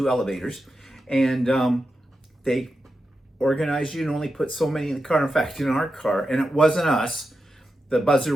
elevators. And they organized you and only put so many in the car. In fact, in our car, and it wasn't us, the buzzer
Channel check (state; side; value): normal; both; correlation 0.89